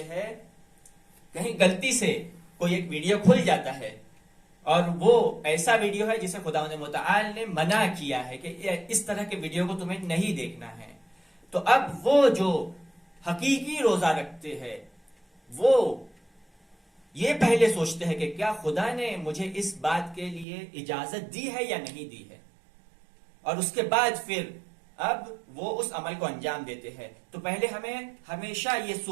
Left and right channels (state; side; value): drops out; left; at 20.5 s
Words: ہیں. کہیں غلطی سے کوئی ایک ویڈیو کھل جاتا ہے اور وہ ایسا ویڈیو ہے جسے خداوند متعال نے منع کیا ہے کہ اس طرح کے ویڈیو کو تمہیں نہیں دیکھنا ہے. تو اب وہ جو حقیقی روزہ رکھتے ہیں وہ یہ پہلے سوچتے ہیں کہ کیا خدا نے مجھے اس بات کے لیے اجازت دی ہے یا نہیں دی ہے، اور اس کے بعد پھر اب وہ اس عمل کو انجام دیتے ہیں. تو پہلے ہمیں ہمیشہ یہ